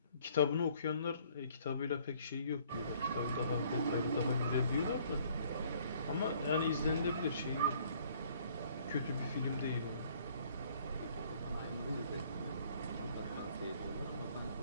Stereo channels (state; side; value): inverted; both; correlation -0.59